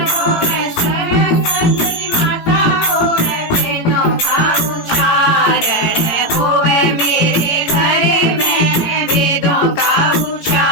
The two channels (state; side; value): late; right; 18 ms